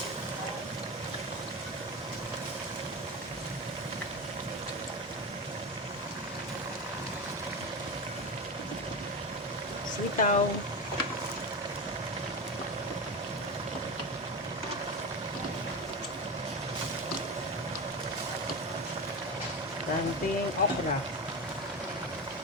Sitaw. Ranting okra.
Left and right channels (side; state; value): both; normal; correlation 0.21